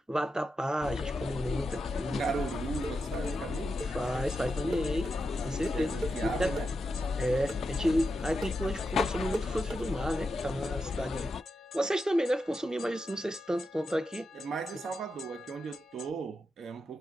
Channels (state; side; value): normal; both; correlation 0.87